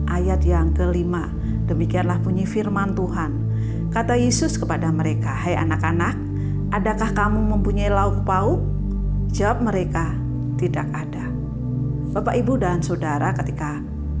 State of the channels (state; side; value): identical; both; correlation 1.00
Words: ayat yang ke-5. Demikianlah bunyi firman Tuhan. Kata Yesus kepada mereka, "Hai anak-anak, adakah kamu mempunyai lauk pauk?" Jawab mereka, "Tidak ada." Bapak Ibu dan Saudara, ketika